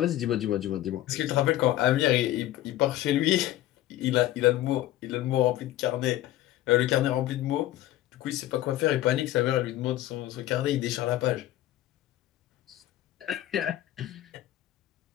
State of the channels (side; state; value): right; quieter; 14.5 dB